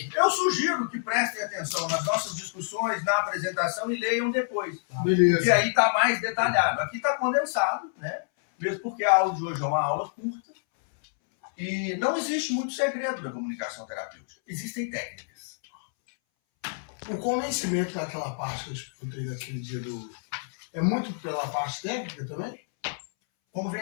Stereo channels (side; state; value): right; silent; 60 dB below the other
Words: Eu sugiro que prestem atenção nas nossas discussões, na apresentação e leiam depois. E Beleza. aí está mais detalhado. Aqui está condensado, né? Mesmo porque a aula de hoje é uma aula curta. E não existe muito segredo da comunicação terapêutica. Existem técnicas. O convencimento daquela parte que eu escutei daquele dia é muito pela parte técnica também?